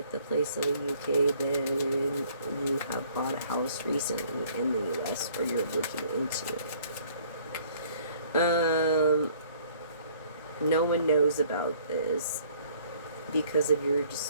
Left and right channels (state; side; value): inverted; both; correlation -0.57